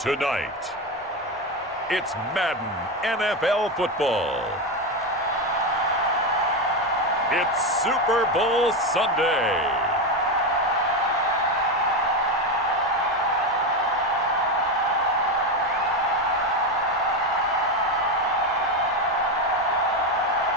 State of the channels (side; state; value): both; normal; correlation 0.13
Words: it's Madden NFL football. It's Super Bowl Sunday.